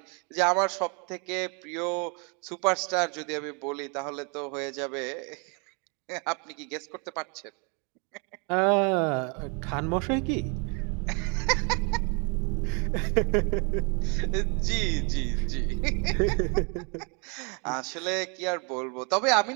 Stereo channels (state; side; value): quieter; left; 34.4 dB